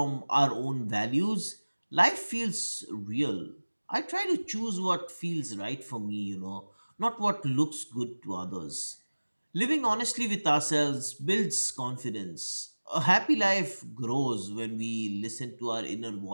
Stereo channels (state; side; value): inverted; both; correlation -1.00